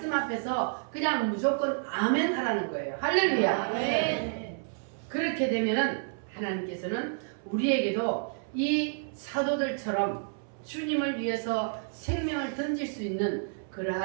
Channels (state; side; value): silent; left; 58 dB below the other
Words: 앞에서 그냥 무조건 아멘 하라는 거예요. 할렐루야. 아멘. 그렇게 되면은 하나님께서는 우리에게도 이 사도들처럼 주님을 위해서 생명을 던질 수 있는